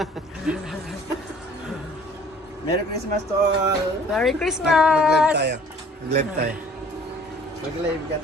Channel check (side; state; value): both; normal; correlation 0.53